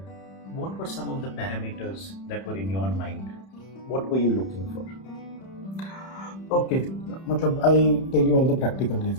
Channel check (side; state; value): right; late; 31 ms